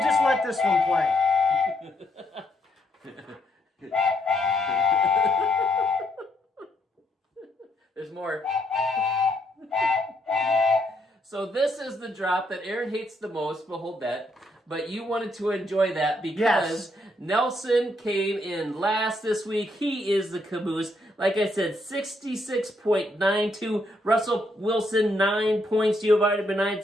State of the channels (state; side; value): normal; both; correlation 0.74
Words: just let this one play. There's more. So this is the drop that Aaron hates the most. We'll hold that. But you wanted to enjoy that because Nelson came in last this week. He is the caboose. Like I said, 66.92. Russell Wilson, 9 points. Giovanni Bernard,